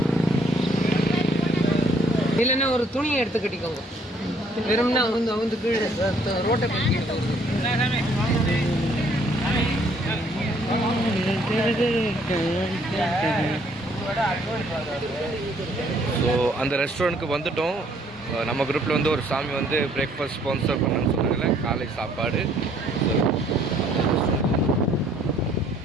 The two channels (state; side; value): normal; both; correlation 0.63